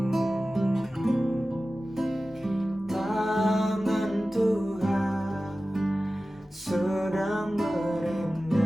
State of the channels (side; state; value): both; normal; correlation 0.95